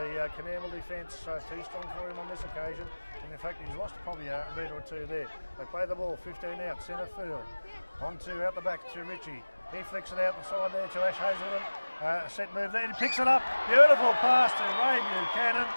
COONAMBLE defence too strong for him on this occasion. And in fact, he's lost probably a metre or two there. They play the ball 15 out, centre field. On to out the back to Richie. He flicks it out the side there to Ash Hazelden. Set move there. He picks it up. Beautiful pass to Ray Buchanan.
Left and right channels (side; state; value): both; inverted; correlation -1.00